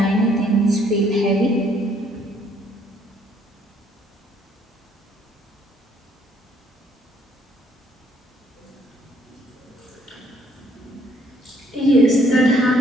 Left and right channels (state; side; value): normal; both; correlation 0.66